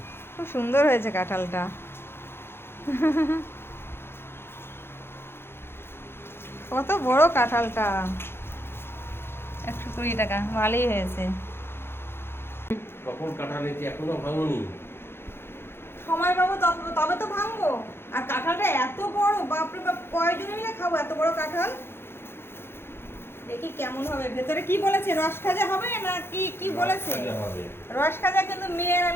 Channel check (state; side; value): late; right; 0.11 ms